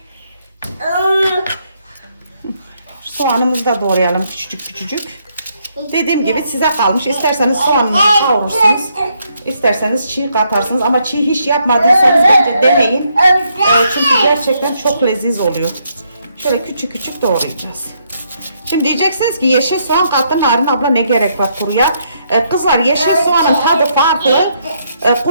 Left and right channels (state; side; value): inverted; both; correlation -0.74